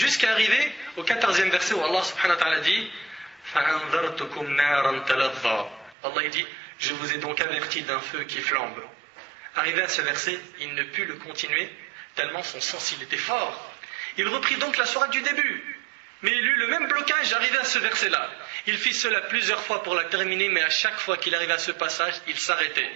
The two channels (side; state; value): left; drops out; at 6.0 s